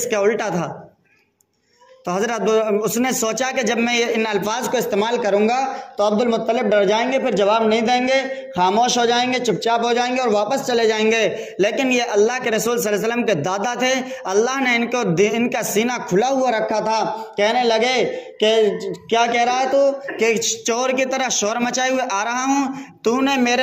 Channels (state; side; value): identical; both; correlation 1.00